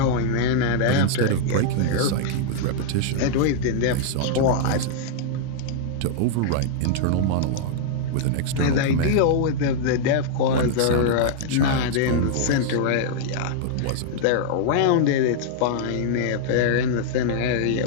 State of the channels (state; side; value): different; both; correlation -0.01